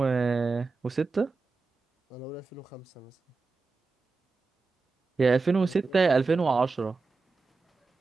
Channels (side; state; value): left; quieter; 4.1 dB